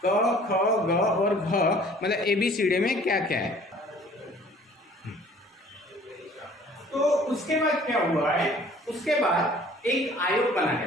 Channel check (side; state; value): both; normal; correlation 0.53